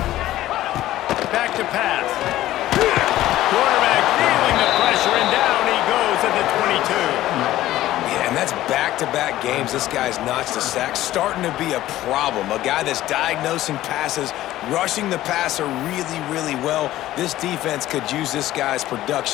Back to pass. Quarterback feeling the pressure, and down he goes at the 22. Yeah, and that's back-to-back games. This guy's notched a sack, starting to be a problem. A guy that's diagnosing passes, rushing the passer really, really well. This defense could use this guy's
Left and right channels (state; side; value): quieter; right; 14.7 dB